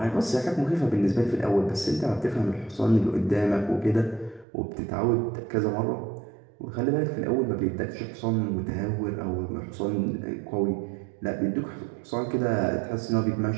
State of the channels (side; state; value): left; drops out; at 4.5 s